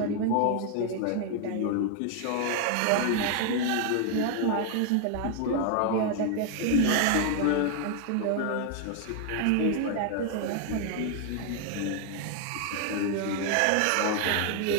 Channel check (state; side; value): different; both; correlation 0.00